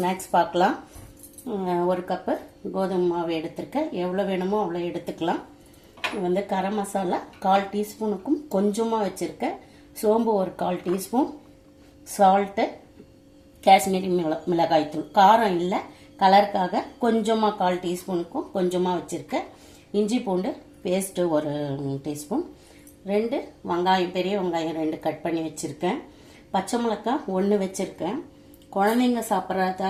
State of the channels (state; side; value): identical; both; correlation 1.00